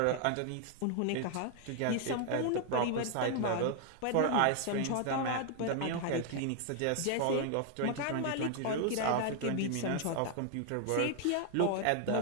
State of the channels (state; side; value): different; both; correlation 0.00